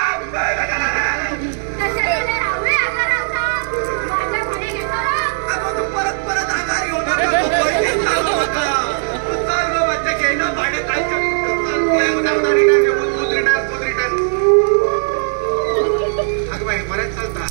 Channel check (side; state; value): left; silent; 67 dB below the other